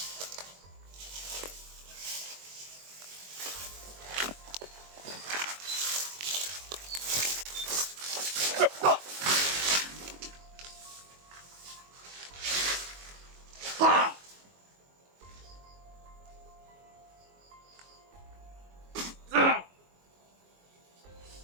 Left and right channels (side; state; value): left; late; 22 ms